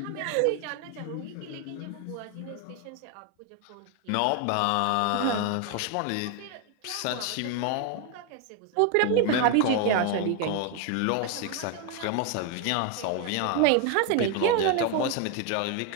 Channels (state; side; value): different; both; correlation 0.01